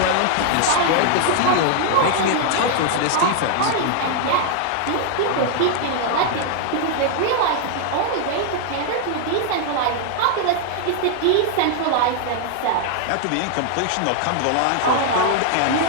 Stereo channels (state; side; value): different; both; correlation 0.00